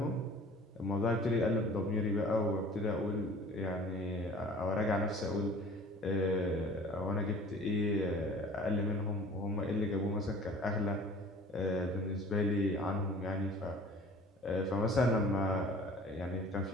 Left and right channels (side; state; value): both; normal; correlation 0.47